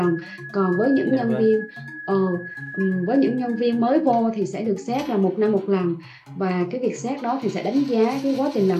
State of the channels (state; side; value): identical; both; correlation 1.00